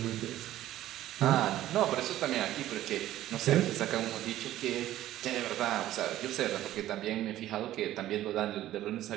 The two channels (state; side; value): quieter; left; 13.8 dB